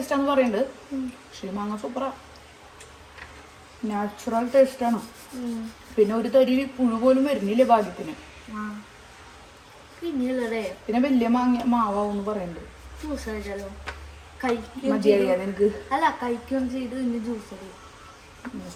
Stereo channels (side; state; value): both; identical; correlation 1.00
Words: പറയുന്നുണ്ട്. പക്ഷേ മാങ്ങ സൂപ്പറാ, നാച്ചുറൽ ടേസ്റ്റാണ്. പിന്നെ ഒരു തരി പുഴു പോലും വരുന്നില്ലേ ഭാഗ്യത്തിന്. പിന്നെ വലിയ മാവാന്ന് പറയുന്നുണ്ട്. മതിയറിയാതെ ജ്യൂസ്